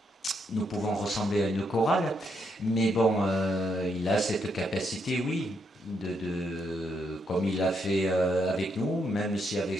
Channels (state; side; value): normal; both; correlation 0.78